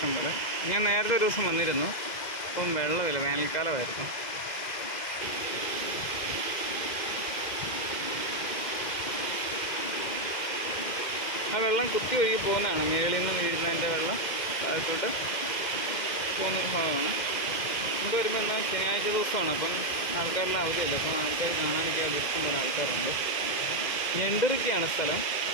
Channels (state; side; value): late; right; 2.0 ms